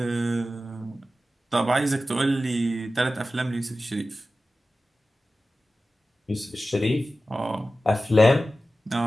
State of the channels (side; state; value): both; normal; correlation 0.94